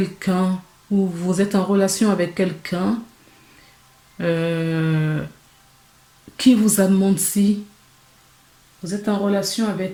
ou vous êtes en relation avec quelqu'un euh, qui vous a menti. Vous êtes en relation avec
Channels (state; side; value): identical; both; correlation 1.00